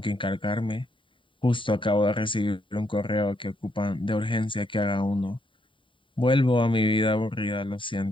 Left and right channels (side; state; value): right; late; 0.25 ms